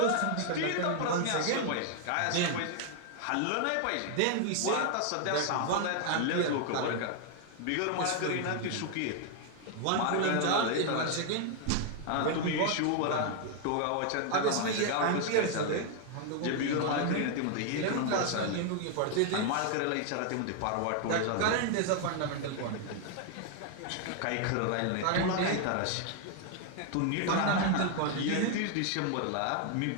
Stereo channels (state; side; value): different; both; correlation 0.00